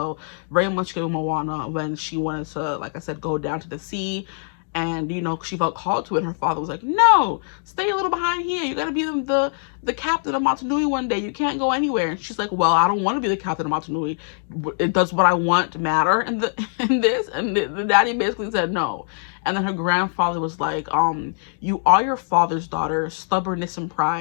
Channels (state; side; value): silent; right; digital silence